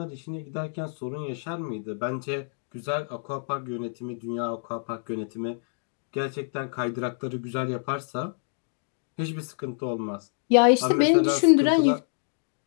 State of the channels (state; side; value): silent; right; digital silence